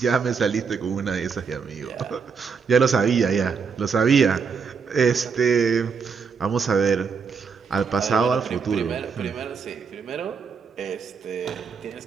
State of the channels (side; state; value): left; quieter; 5.8 dB